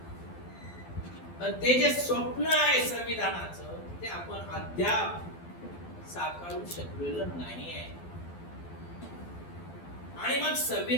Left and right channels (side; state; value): right; late; 12 ms